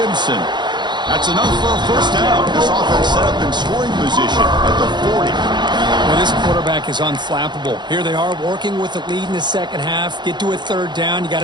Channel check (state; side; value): late; left; 0.21 ms